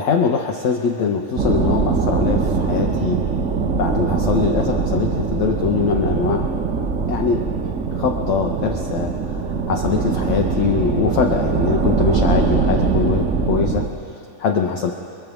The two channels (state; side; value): late; right; 3.5 ms